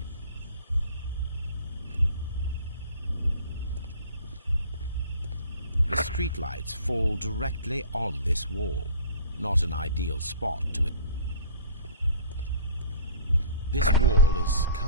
The streetlights fall directly on this wall. Not an ideal spot to it. This wall is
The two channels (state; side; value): inverted; both; correlation -0.45